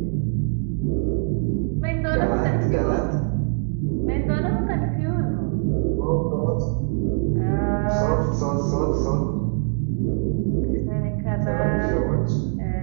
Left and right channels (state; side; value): silent; left; 56 dB below the other